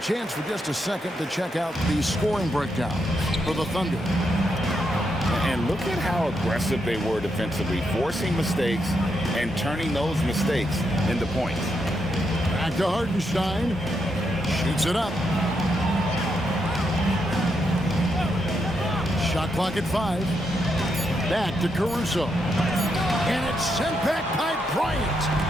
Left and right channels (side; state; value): both; normal; correlation 0.81